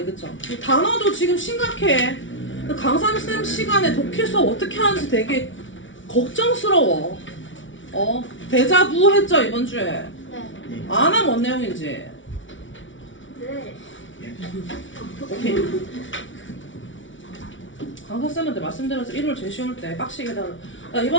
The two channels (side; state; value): right; late; 0.56 ms